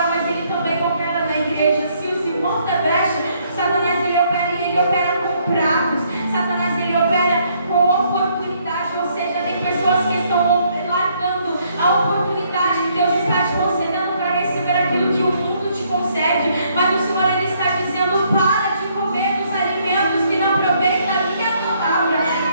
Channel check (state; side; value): inverted; both; correlation -0.68